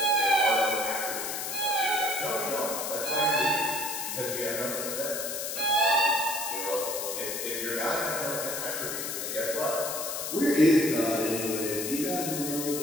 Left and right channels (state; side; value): noise; left; hiss, 4 dB below the sound